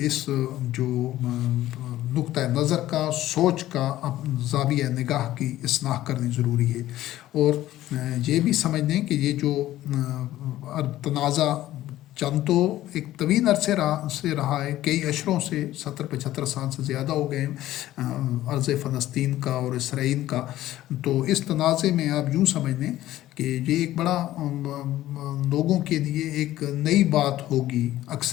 اس جو نقطہ نظر کا، سوچ کا، زاویہ نگاہ کی اصلاح کرنی ضروری ہے، اور یہ بھی سمجھ لیں کہ یہ جو تنازع چند تو ایک طویل عرصے سے رہا ہے، کئی اشروں سے، 70-75 سال سے زیادہ ہو گئے عرض فلسطین کا اور اسرائیل کا۔ تو اس تنازع میں آپ یوں سمجھ لیں کہ یہ ایک بڑا لوگوں کے لیے ایک نئی بات ہوگی،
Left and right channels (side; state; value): right; quieter; 14.5 dB